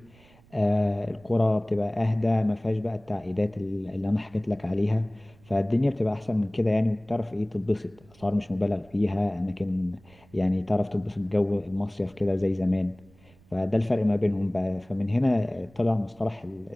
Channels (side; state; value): right; noise; rumble, 27 dB below the sound